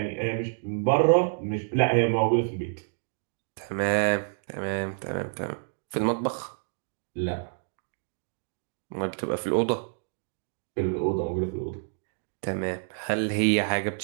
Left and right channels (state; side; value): silent; left; digital silence